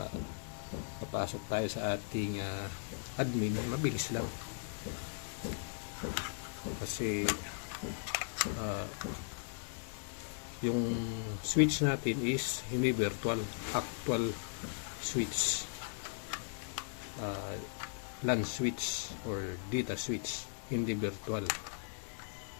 papasok tayo sa ating admin, mabilis lang. Kasi yung switch natin is hindi virtual, actual switch, LAN switch or data switch, hindi virtual.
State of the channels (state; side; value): silent; right; digital silence